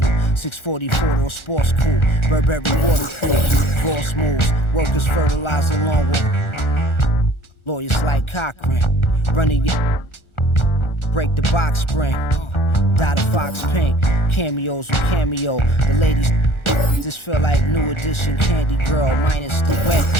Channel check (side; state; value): right; late; 1.4 ms